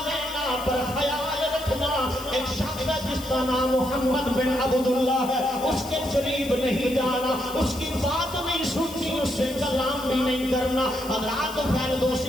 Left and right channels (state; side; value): noise; left; hiss, 14 dB below the sound